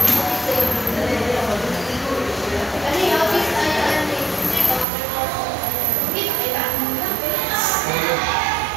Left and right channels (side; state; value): left; drops out; at 4.9 s